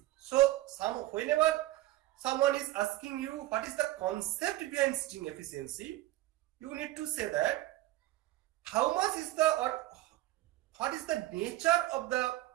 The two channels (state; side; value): quieter; left; 16.7 dB